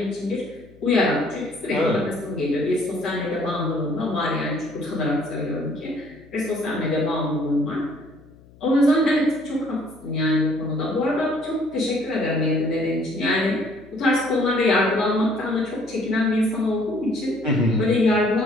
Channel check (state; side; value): noise; left; hum, 25 dB below the sound